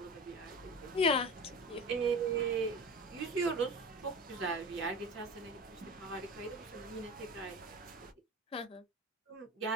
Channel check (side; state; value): both; normal; correlation 0.32